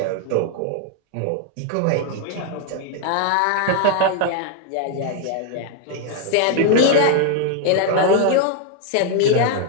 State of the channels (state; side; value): different; both; correlation 0.00